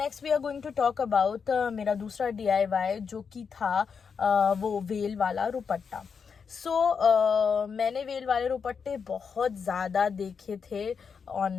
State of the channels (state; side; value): quieter; right; 6.1 dB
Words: we are going to talk about मेरा दूसरा DIY जो कि था वो वेल वाला रुपट्टा। सो मैंने वेल वाले रुपट्टे बहुत ज़्यादा देखे थे ऑन